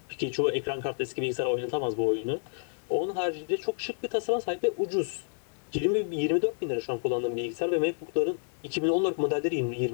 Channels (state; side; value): silent; right; digital silence